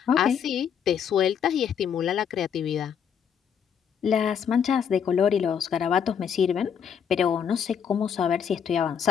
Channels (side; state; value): right; quieter; 7.7 dB